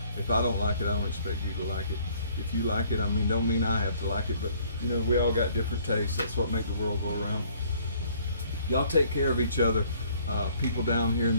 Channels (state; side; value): inverted; both; correlation -0.60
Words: If I don't like it, I don't expect you to like it. If you like it, I mean, don't mean I have to like it, but, you know, we all got different tastes. That's what makes the world go around. Y'all take care of each other. People down here in